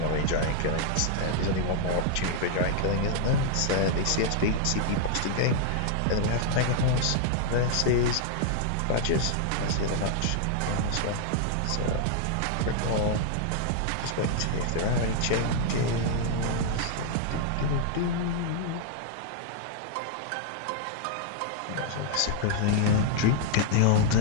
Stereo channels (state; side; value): different; both; correlation 0.00